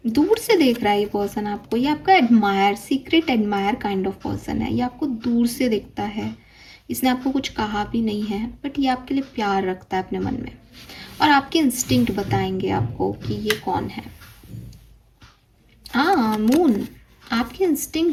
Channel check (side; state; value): both; identical; correlation 1.00